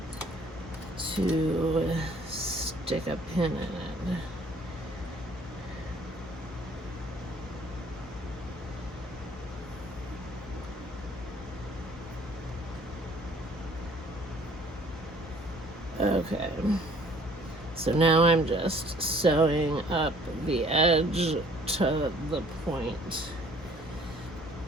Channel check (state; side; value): normal; both; correlation 0.56